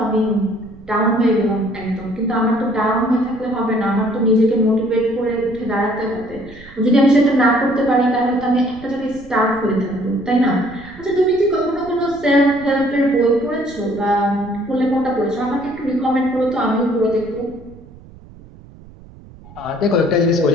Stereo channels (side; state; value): right; noise; rumble, 21 dB below the sound